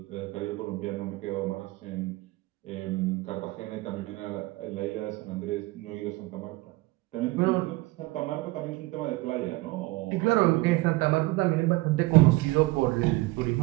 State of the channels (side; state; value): left; quieter; 21.1 dB